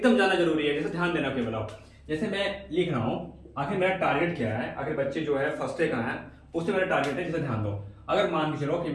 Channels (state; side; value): identical; both; correlation 1.00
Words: जानना जरूरी है, जैसे ध्यान देना केवल आप। जैसे मैं लिख रहा हूँ, आखिर मेरा टारगेट क्या है, आखिर बच्चे जो है फर्स्ट डे कहाँ है, उससे मेरा टारगेट है। जैसे ध्यान दो, अगर मान के चलो कि